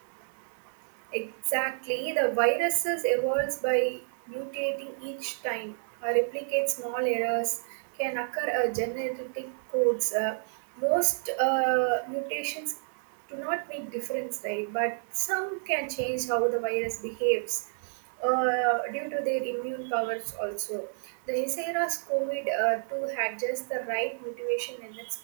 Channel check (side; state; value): left; silent; digital silence